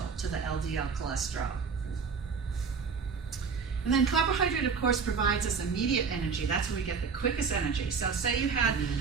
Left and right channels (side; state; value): left; quieter; 5.6 dB